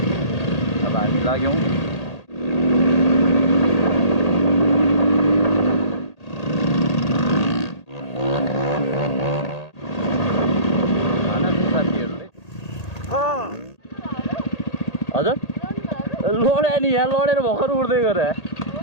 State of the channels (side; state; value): right; late; 1.8 ms